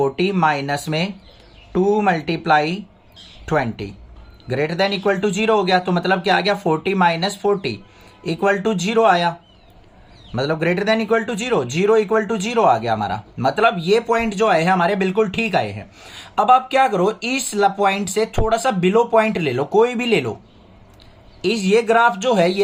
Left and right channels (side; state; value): both; identical; correlation 1.00